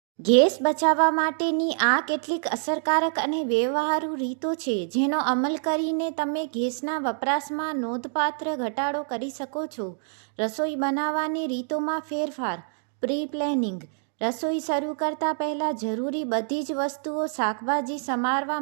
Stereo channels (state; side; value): silent; left; digital silence